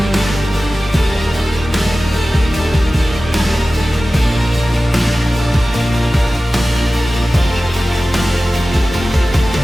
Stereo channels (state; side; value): normal; both; correlation 0.96